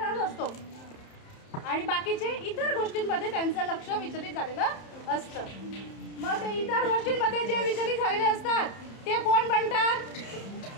असतो आणि बाकीचे इतर गोष्टींमध्ये त्यांचं लक्ष विचलित झालेलं असतं. मग ते इतर गोष्टींमध्ये जे विचलित झालेले असतात ते कोण बनतात?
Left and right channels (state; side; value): late; right; 30 ms